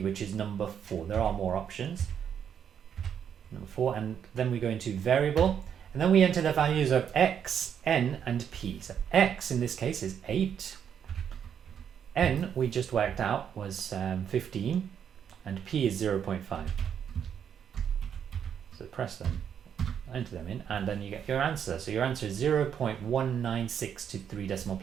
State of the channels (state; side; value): quieter; left; 8.3 dB